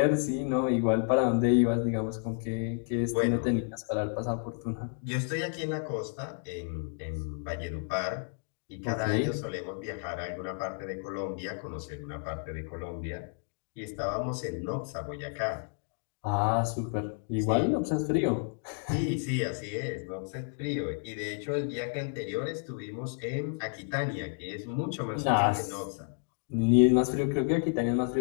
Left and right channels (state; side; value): silent; right; 57 dB below the other